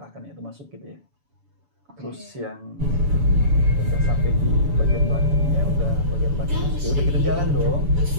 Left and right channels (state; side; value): late; left; 7.0 ms